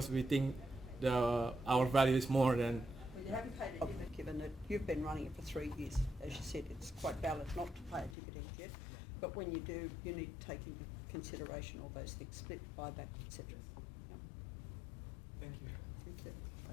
we think our value is more than. Well, you haven't paid a dividend given that you've been running it for 3 years. As you said, it's quite valid not to pay a dividend yet, but when you do, you need to take into consideration all those things, split, buyback, etc. Yeah. Thank you. Thank you.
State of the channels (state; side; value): drops out; right; at 8.2 s